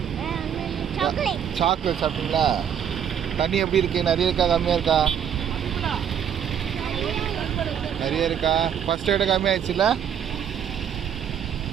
சாக்லேட் சாப்பிட்டீங்களா? தண்ணி எப்படி இருக்கு? நிறைய இருக்கா கம்மியாக இருக்கா? நிறைய இருக்கா? ஃபர்ஸ்ட் விட கம்மியாயிடுச்சுல்ல?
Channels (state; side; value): quieter; left; 8.7 dB